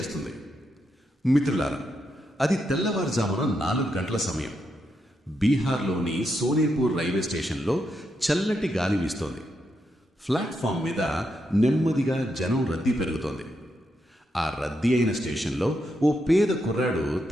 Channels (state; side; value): normal; both; correlation 0.82